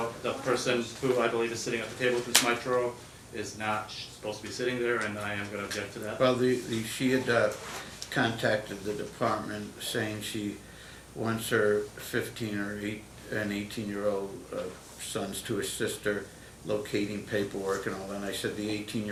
the person who I believe is sitting at the table with Ms. Mitro is not supposed to be sitting there, and I am going to object to that. Well, she had contacted the department saying she wants her 15 or 18-year-old sons to assist her locating paperwork and all that. And I said the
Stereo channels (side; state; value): both; identical; correlation 1.00